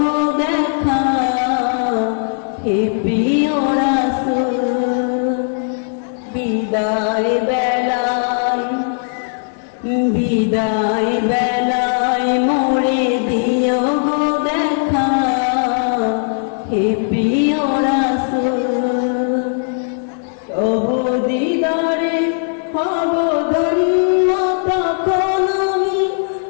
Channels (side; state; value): right; silent; 68 dB below the other